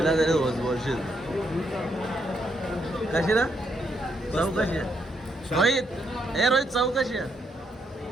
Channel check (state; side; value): normal; both; correlation 0.77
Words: तरी बोलशील. कशी ना चव कशी आहे रोहित? ए रोहित चव कशी आहे?